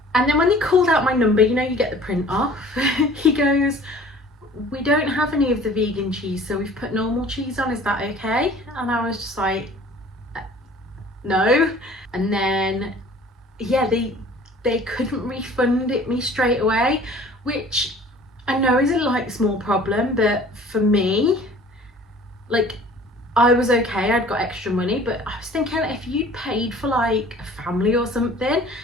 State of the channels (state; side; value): normal; both; correlation 0.49